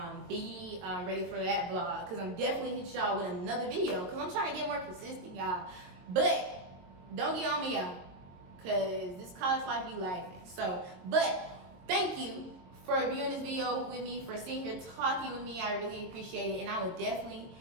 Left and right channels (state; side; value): late; left; 22 ms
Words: be ready for that vlog, because I'm definitely hit y'all with another video, because I'm trying to get more consistent, y'all. But don't get on me, y'all, because this college life be laughing. So, but thank you for viewing this video with me, for sitting here talking with me. I really appreciate it, and I will definitely